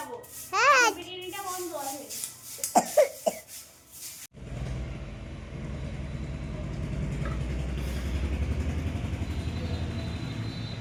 হ্যাঁ বিরিয়ানিটা বন্ধ আছে।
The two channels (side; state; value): both; identical; correlation 1.00